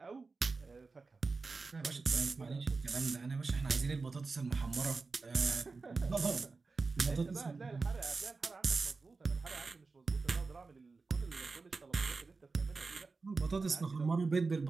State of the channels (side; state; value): left; quieter; 4.1 dB